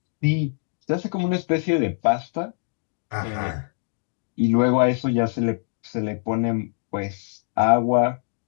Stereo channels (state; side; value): silent; right; digital silence